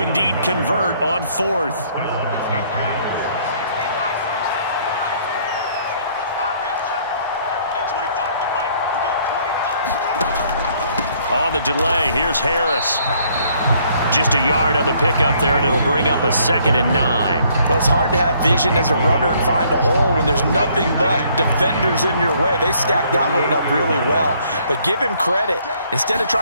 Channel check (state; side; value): inverted; both; correlation -0.64